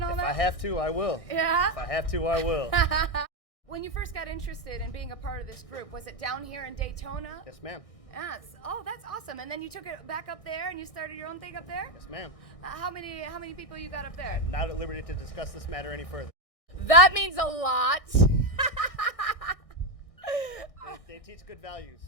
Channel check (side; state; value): right; late; 1.6 ms